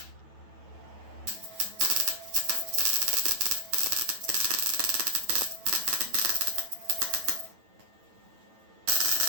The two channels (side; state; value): left; late; 9.1 ms